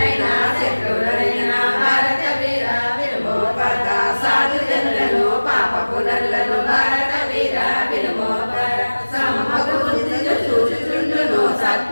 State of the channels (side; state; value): both; inverted; correlation -1.00